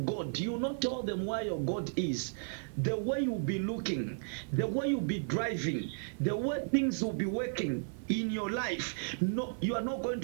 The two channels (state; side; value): silent; left; 55 dB below the other